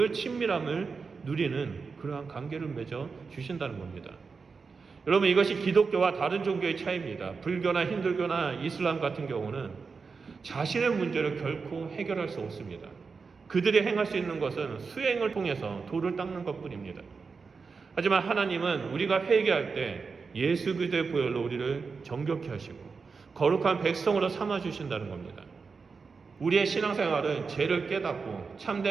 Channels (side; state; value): left; quieter; 4.9 dB